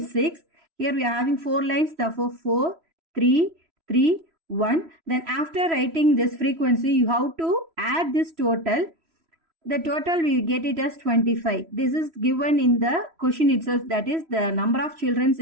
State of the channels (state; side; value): late; left; 3.1 ms